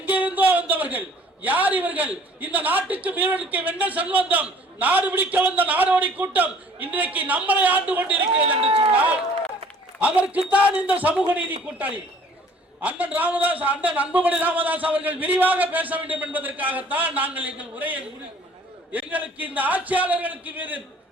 வந்தவர்கள். யார் இவர்கள்? இந்த நாட்டுக்கு மீறலுக்கு என்ன சம்பந்தம்? நாடு பிடிக்க வந்த நாடோடி கூட்டம் இன்றைக்கு நம்மளை ஆண்டு கொண்டிருக்கிறது என்று சொன்னால் அதற்குத்தான் இந்த சமூக நீதி கூட்டணி. அண்ணன் ராமதாஸ், அண்ணன் அன்புமணி ராமதாஸ் அவர்கள் விரிவாக பேச வேண்டும் என்பதற்காகத்தான் நாங்கள் எங்கள் உரையை எங்களுக்கு இந்த ஆட்சியாளர்களுக்கு மீது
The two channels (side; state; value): both; normal; correlation 0.55